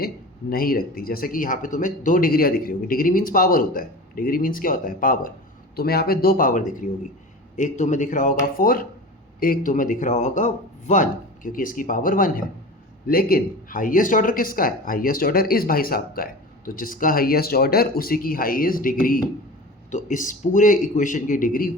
नहीं रखती। जैसे कि यहाँ पे तुम्हें 2 डिग्रियाँ दिख रही होगी, डिग्री मीन्स पावर होता है, डिग्री मीन्स क्या होता है, पावर। तुम्हें यहाँ पे 2 पावर दिख रही होगी, एक तुम्हें दिख रहा होगा 4, एक तुम्हें दिख रहा होगा 1, क्योंकि इसकी पावर 1 है। लेकिन हाईएस्ट ऑर्डर किसका है, हाईएस्ट ऑर्डर इस भाई साहब का है, तो जिसका हाईएस्ट ऑर्डर उसी की हाईएस्ट डिग्री। तो इस पूरे इक्वेशन की डिग्री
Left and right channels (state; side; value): normal; both; correlation 0.34